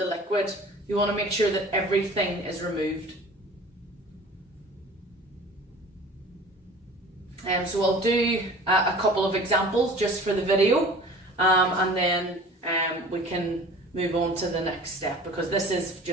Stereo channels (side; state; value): both; normal; correlation 0.44